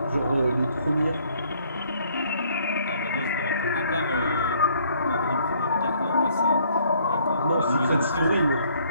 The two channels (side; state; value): both; inverted; correlation -0.63